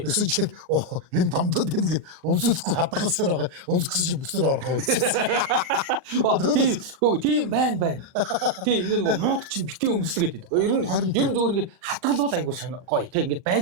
Гэсэн чинь энэ томдод ингээд өмсөхгүй хадгалсаар байгаа. Өмсгсөн чинь бүксээр орох үйлчсэн. Тийм байна. Тийм ингээ нөгөө мууд чинь битээ өмслөгээд байдаг. Ер нь зөвөр ингээд хадгалвал айгуу гоё. Тэ ингээд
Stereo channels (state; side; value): late; left; 39 ms